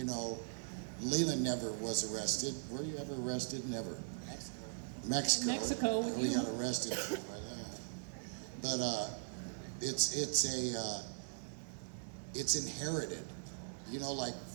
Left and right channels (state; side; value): silent; left; digital silence